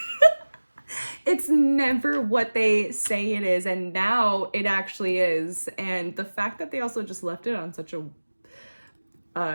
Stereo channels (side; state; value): both; inverted; correlation -1.00